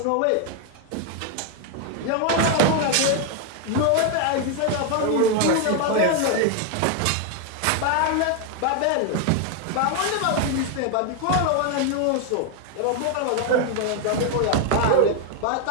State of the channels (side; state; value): both; different; correlation 0.01